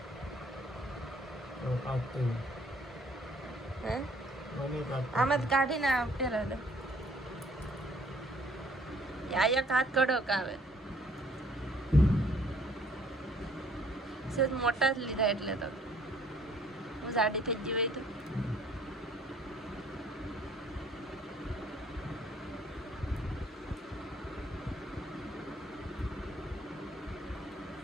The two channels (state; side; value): normal; both; correlation 0.60